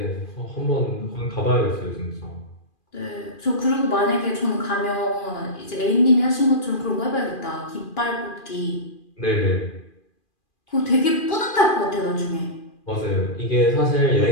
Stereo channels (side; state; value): right; late; 2.4 ms